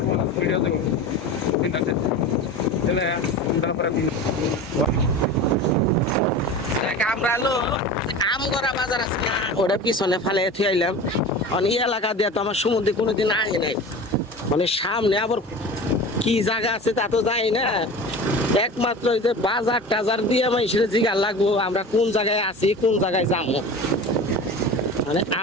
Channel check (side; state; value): both; normal; correlation 0.33